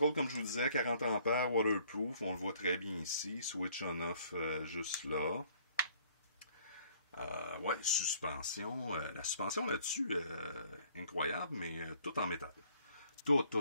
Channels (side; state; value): both; inverted; correlation -0.59